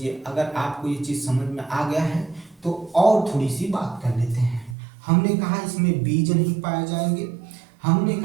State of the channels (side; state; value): left; drops out; at 4.8 s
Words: अगर आपको ये चीज़ समझ में आ गया है तो और थोड़ी सी बात कर लेते हैं। हमने कहा इसमें बीज नहीं पाए जाएंगे, हमने